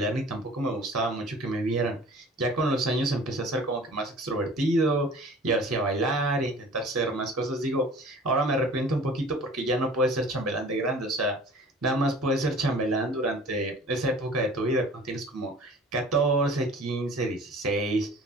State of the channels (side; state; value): both; normal; correlation 0.46